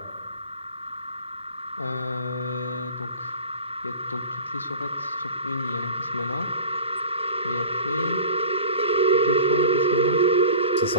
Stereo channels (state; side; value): inverted; both; correlation -0.39